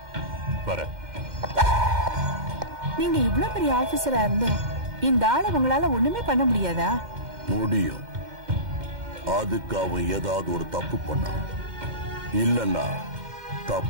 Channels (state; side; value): late; left; 2.1 ms